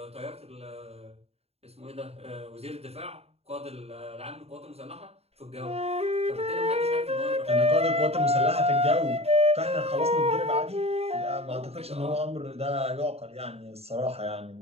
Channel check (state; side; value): late; left; 0.30 ms